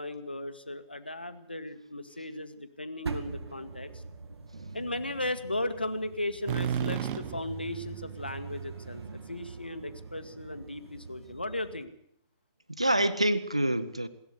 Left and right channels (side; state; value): both; inverted; correlation -0.75